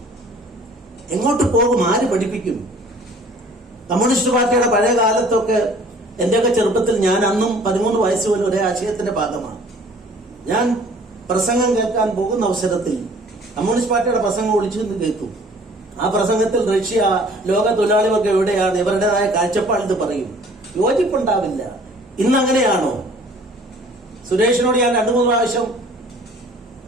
എങ്ങോട്ട് പോകും? ആര് പഠിപ്പിക്കും? കമ്മ്യൂണിസ്റ്റ് പാർട്ടിയുടെ പഴയ കാലത്തൊക്കെ എന്റെയൊക്കെ ചെറുപ്പത്തിൽ ഞാൻ അന്നും 13 വയസ്സ് പോലും ഒരേ ആശയത്തിന്റെ ഭാഗമാണ്. ഞാൻ പ്രസംഗം കേൾക്കാൻ പോകുന്ന അവസരത്തിൽ കമ്മ്യൂണിസ്റ്റ് പാർട്ടിയുടെ പ്രസംഗം ഒളിച്ചു നിന്ന് കേൾക്കും. ആ പ്രസംഗത്തിൽ റഷ്യ, ലോക തൊഴിലാളികൾക്ക് എവിടെയാണ്, ഇവരുടേതായ കാഴ്ചപ്പാട് പറയും. യോജിപ്പുണ്ടാവില്ല. ഇന്ന് അങ്ങനെയാണോ? സുരേഷിനോട് ഞാൻ 2-3 പ്രാവശ്യം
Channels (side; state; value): both; normal; correlation 0.52